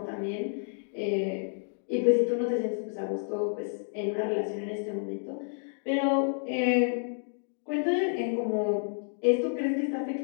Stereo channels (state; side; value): silent; right; digital silence